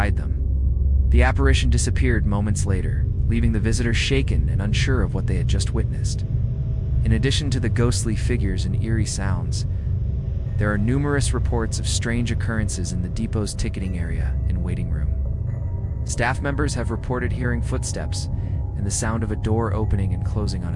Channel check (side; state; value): both; identical; correlation 1.00